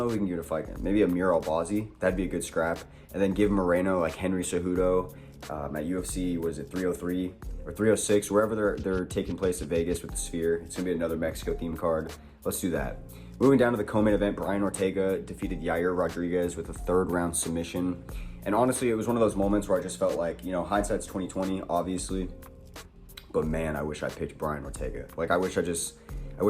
if we can give it a fight. Maybe Amir Albazi. That'd be a good scrap. And then give Moreno like Henry Cejudo at UFC, what is it, 303 or 306, wherever they're taking place at Vegas with the Sphere. It's going to be another Mexico themed card. Let's do that. Moving down to the co-main event, Brian Ortega defeated Yair Rodriguez with a third round submission. And honestly, it was one of those moments where I just felt like, you know, hindsight's 2020, obviously. But man, I wish I picked Brian Ortega. Like, I wish I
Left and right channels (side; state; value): both; identical; correlation 1.00